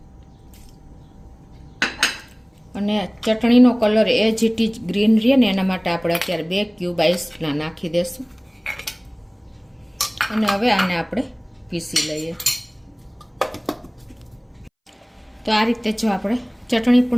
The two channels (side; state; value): both; identical; correlation 1.00